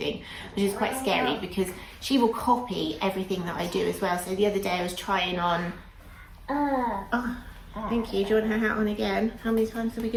which is quite scary because she will copy everything that I do as well. So the other day I was trying on, oh, thank you. Do you want her hat on again? How many times are we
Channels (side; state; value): both; identical; correlation 1.00